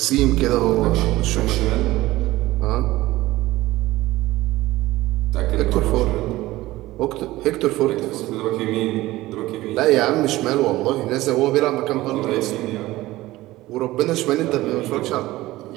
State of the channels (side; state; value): left; quieter; 17.6 dB